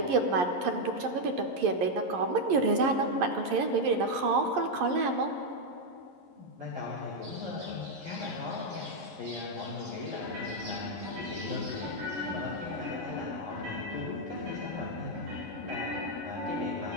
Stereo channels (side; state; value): left; late; 11 ms